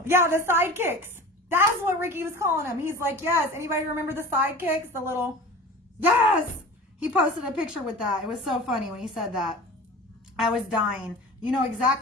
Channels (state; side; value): normal; both; correlation 0.37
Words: Yeah, the sidekicks. That's what Ricky was calling them. He's like, yes. Anybody remember the sidekicks? The little, yes. He posted a picture with that. It was so funny when he said that. I was dying. You know